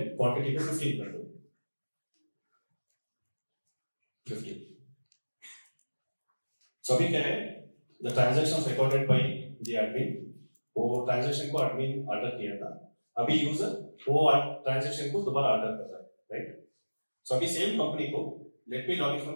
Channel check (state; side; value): inverted; both; correlation -1.00